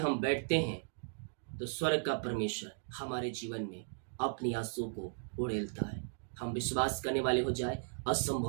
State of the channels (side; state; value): left; silent; digital silence